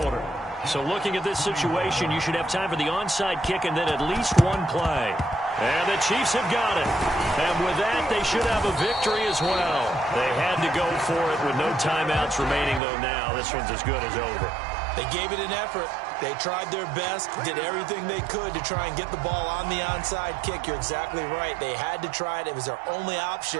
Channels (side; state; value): left; drops out; at 12.8 s